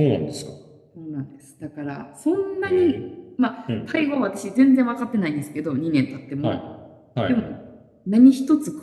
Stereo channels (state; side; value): identical; both; correlation 1.00